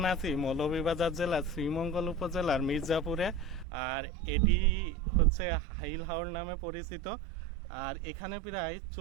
আছি মৌলভীবাজার জেলার শ্রীমঙ্গল উপজেলার মির্জাপুরে। আর এটি হচ্ছে হাইলাহর নামে পরিচিত। আর এখানে প্রায়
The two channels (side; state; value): left; drops out; at 3.7 s